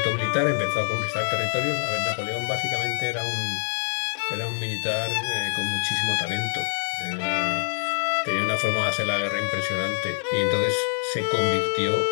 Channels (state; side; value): silent; right; digital silence